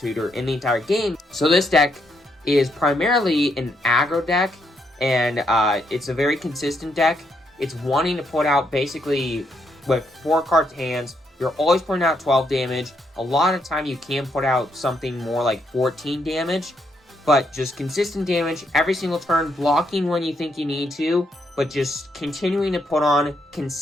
in the entire game. So this deck is primarily an aggro deck, and it's a very consistent deck. It's wanting to put out basically with 4 cards hands. You're always putting out 12 damage. A lot of time you can put out something more like 14 damage. But just consistent damage every single turn, blocking when you think you need to, but just continuing to put on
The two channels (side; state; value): both; normal; correlation 0.76